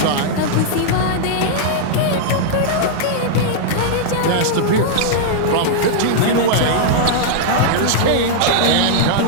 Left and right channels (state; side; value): different; both; correlation -0.01